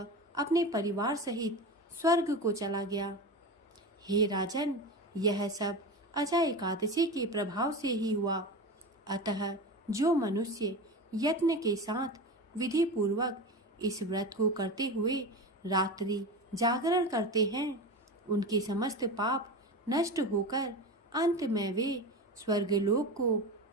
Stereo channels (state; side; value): normal; both; correlation 0.26